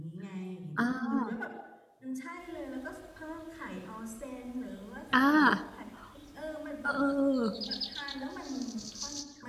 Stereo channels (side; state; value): both; identical; correlation 1.00